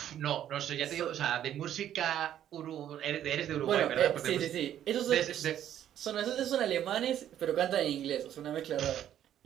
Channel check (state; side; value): quieter; left; 10.9 dB